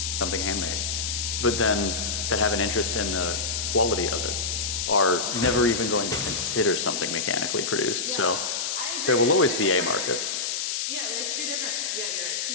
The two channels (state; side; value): noise; left; hiss, 1 dB below the sound